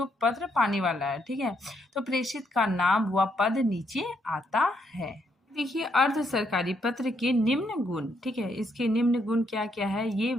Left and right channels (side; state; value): both; normal; correlation 0.75